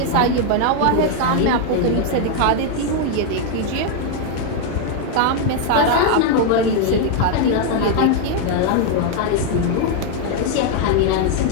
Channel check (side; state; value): both; different; correlation 0.00